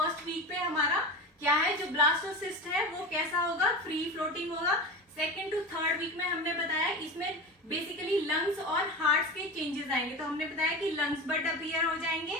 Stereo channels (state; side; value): normal; both; correlation 0.28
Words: वीक पे हमारा क्या है, जो ब्लास्टोसिस्ट है वो कैसा होगा, फ्री फ्लोटिंग होगा। 2nd to 3rd वीक में हमने बताया इसमें बेसिकली लंग्स और हार्ट के चेंजेस आएंगे। तो हमने बताया कि लंग्स बड अपीयर हो जाएंगे,